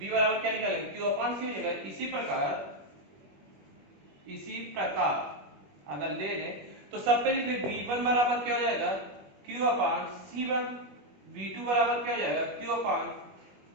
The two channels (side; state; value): left; late; 21 ms